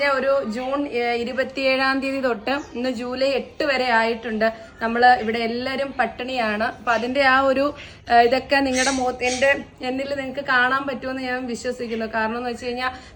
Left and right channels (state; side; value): identical; both; correlation 1.00